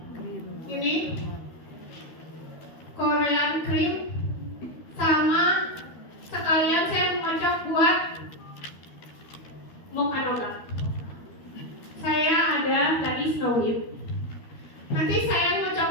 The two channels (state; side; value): late; right; 13 ms